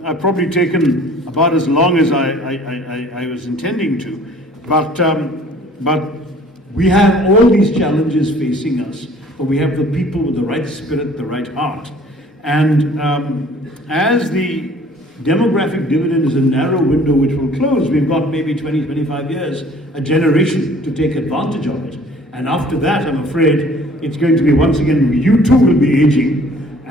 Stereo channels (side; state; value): both; normal; correlation 0.53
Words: I've probably taken about as long as I was intending to, but we have all these challenges facing us, but we have the people with the right spirit, the right heart. And as the demographic dividend is a narrow window which will close, we've got maybe 20, 25 years, a generation to take advantage of it. And after that, I'm afraid it's going to be once again, you too will be aging,